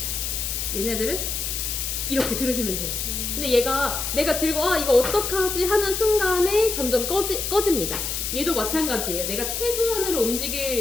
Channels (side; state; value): left; noise; hiss, 2 dB below the sound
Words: 얘네들은 이렇게 들으시면 돼요. 근데 얘가 내가 들고 이거 어떡하지 하는 순간에 점점 꺼집니다. 얘도 마찬가지예요. 내가 최소한으로